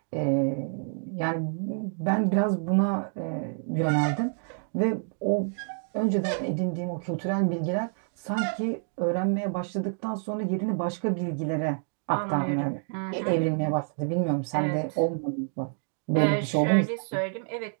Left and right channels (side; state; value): left; silent; 59 dB below the other